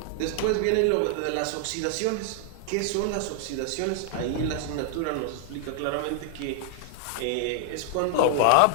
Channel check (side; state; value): both; different; correlation 0.00